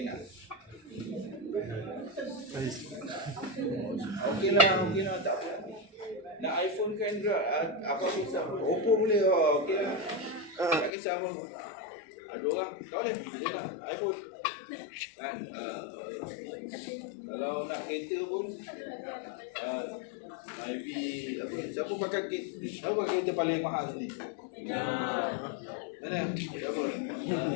Okey lah, tak apa. Nak iPhone kan apa kisah Oppo boleh, okey lah. Tak kisah apa. Ada orang, tak boleh, boleh lah, iPhone. Kan, kalau nak kereta pun IV apa, siapa pakai kereta paling mahal ni? Mana? Siapa?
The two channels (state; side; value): drops out; right; at 10.9 s